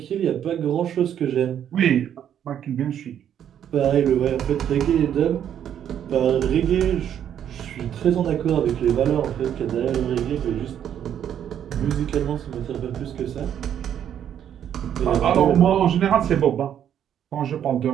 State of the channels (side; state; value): left; quieter; 9.7 dB